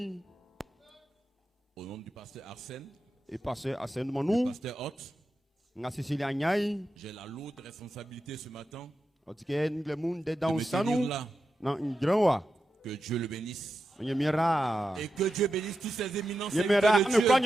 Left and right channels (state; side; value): normal; both; correlation 0.89